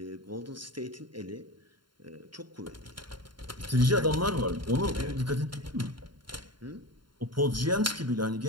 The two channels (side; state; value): left; late; 0.72 ms